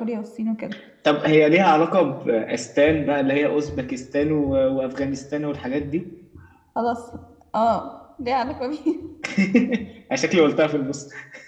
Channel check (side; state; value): both; identical; correlation 1.00